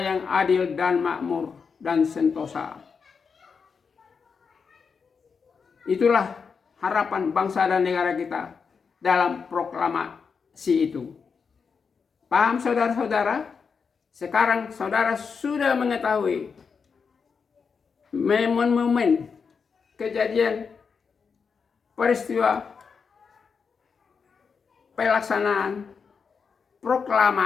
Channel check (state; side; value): quieter; right; 5.7 dB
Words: yang adil dan makmur dan sentosa. Itulah harapan bangsa dan negara kita dalam proklamasi itu. Paham saudara-saudara? Sekarang saudara sudah mengetahui momen-momen kejadian peristiwa pelaksanaan